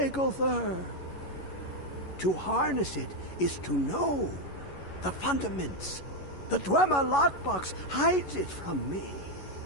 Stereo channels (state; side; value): late; right; 11 ms